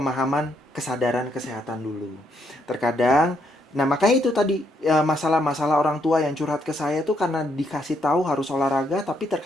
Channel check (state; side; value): normal; both; correlation 0.74